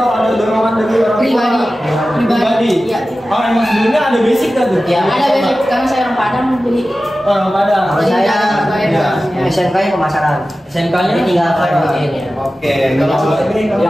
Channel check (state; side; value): normal; both; correlation 0.95